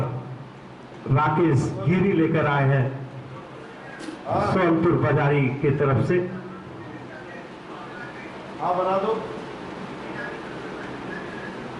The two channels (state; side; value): identical; both; correlation 1.00